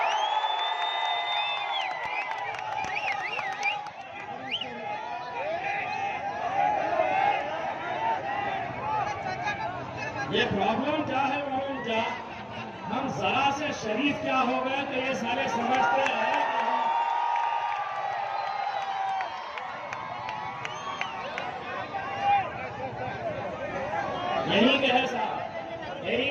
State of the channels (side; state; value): both; identical; correlation 1.00